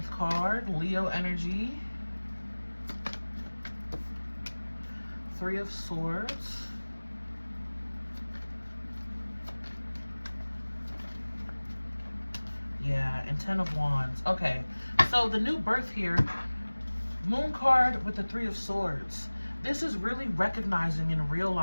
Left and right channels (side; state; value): both; inverted; correlation -1.00